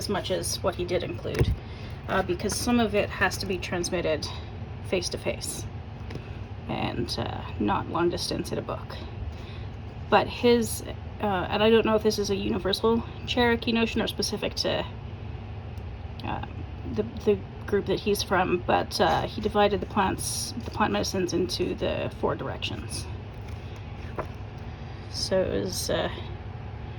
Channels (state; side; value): identical; both; correlation 1.00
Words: much as what he did include, because some of it has to be transmitted face to face and not long distance in a book. But his, and I don't know if this is a universal Cherokee notion or specific to the group that he's from, but he divided the plant medicines into the 4 directions. So it was